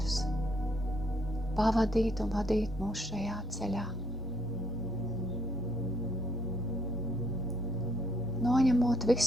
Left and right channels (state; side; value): normal; both; correlation 0.70